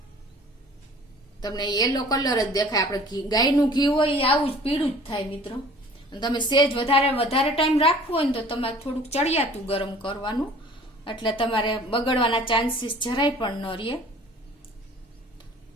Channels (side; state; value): both; normal; correlation 0.49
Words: તમને યેલો કલર જ દેખાય. આપણે ગાયનું ઘી હોય એ આવું જ પીળું જ થાય મિત્રો. તમે સેજ વધારે ટાઈમ રાખવો હોય ને તો તમારે થોડુંક ચડિયાતું ગરમ કરવાનું. એટલે તમારે બગડવાના ચાન્સીસ જરાય પણ ન રહે.